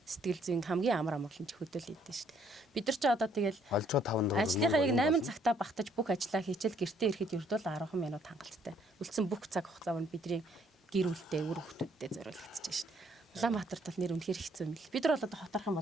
сэтгэл зүйн хамгийн амар амгалан ч хөдөл идэв шүү дээ. Бид нар ч одоо тэгэл олжоо 5 дуруу. ажлынхаа яг 8 цагтаа багтаж бүх ажлаа хийчихэл гэртээ ирэхэд ердөө 10 минут хангалттай. Үлдсэн бүх цаг хугацаа нь бидний гэр бүлтэй үр хүүхдүүдэд зориулагдчихж шүү дээ. Улаанбаатарт бол нэр үнэхээр хэцүү юм л. Бид нар бол одоо хотарх юм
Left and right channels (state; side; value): normal; both; correlation 0.66